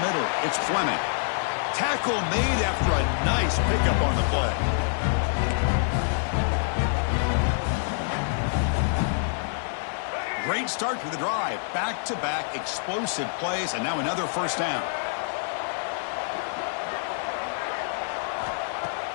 middle. It's Fleming. Tackle made after a nice pickup on the play. Great start to the drive. Back-to-back explosive plays, and now another first down.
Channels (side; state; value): right; silent; digital silence